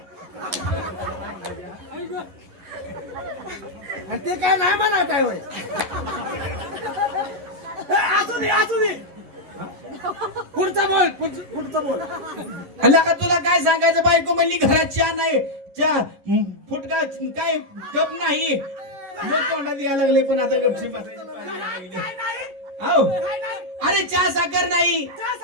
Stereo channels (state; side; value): late; left; 11 ms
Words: आणि ते काय नाही म्हणा काय होय. असू दे. पुढचं बोल. अल्ला का तुला काय सांगायचं? बायको म्हणली घरात चहा नाही, चहा फुटका काय कप नाही. मग तोंडात यायला लागले, पण आता गपशी बसायची पाळी लागली. काय नाही? हो. काय नाही? अरे चहा साखर नाही, चहा